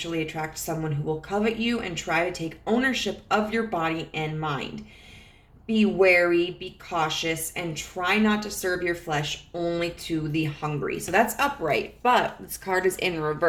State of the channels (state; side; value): identical; both; correlation 1.00